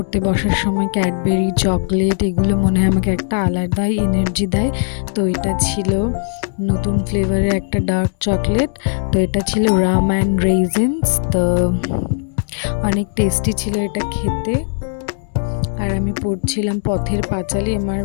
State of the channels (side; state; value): right; silent; 67 dB below the other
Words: বসার সময় ক্যাডবেরি চকলেট এগুলো মনে হয় আমাকে একটা আলাদাই এনার্জি দেয়। তো এটা ছিল নতুন ফ্লেভারের একটা ডার্ক চকলেট। তো এটা ছিল রাম অ্যান্ড রেজিনস। তো অনেক টেস্টি ছিল এটা খেতে। আর আমি পড়ছিলাম পথের পাঁচালী।